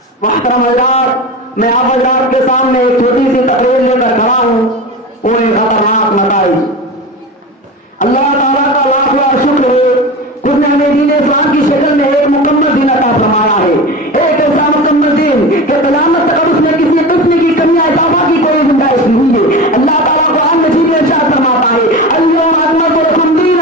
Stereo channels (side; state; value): both; normal; correlation 0.28